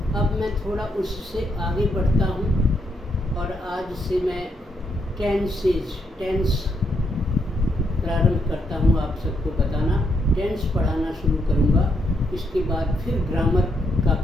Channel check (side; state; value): both; normal; correlation 0.77